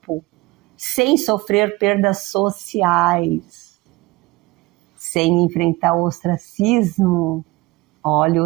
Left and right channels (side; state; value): left; quieter; 21.0 dB